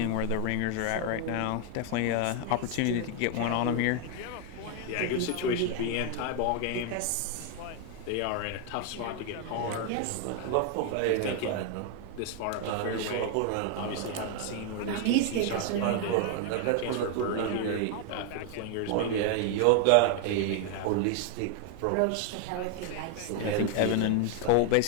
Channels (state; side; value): different; both; correlation 0.01